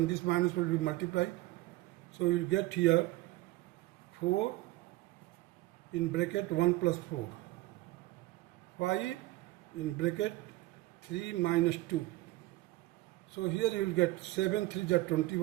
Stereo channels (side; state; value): left; quieter; 18.4 dB